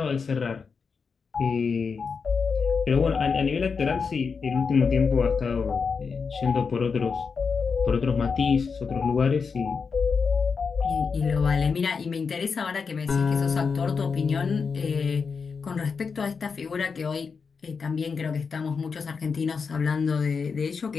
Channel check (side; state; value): right; quieter; 5.4 dB